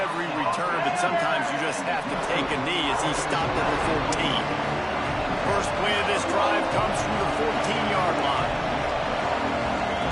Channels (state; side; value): identical; both; correlation 1.00